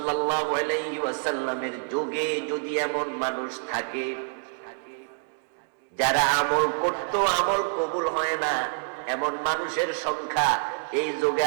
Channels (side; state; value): left; silent; 60 dB below the other